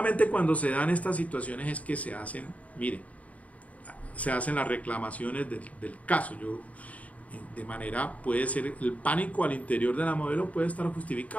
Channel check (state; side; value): late; right; 0.069 ms